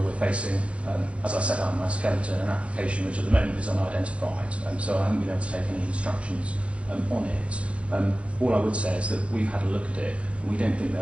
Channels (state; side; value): late; left; 0.062 ms